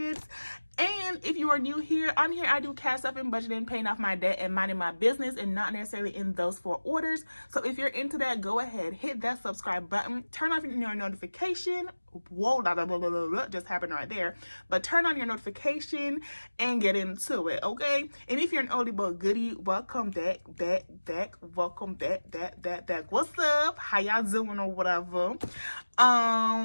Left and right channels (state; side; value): inverted; both; correlation -1.00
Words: And if you are new here, on here I do cash stuff and budgeting, paying off my debt and minding my business, and not necessarily in those four orders. So if you're into that, go ahead, hit that subscribe button, turn off your notification. Whoa, just happened right there. But turn on your notification and get into it, okay? And if you're an oldie but goodie, welcome back. Welcome back. What's up? How y'all doing or whatever?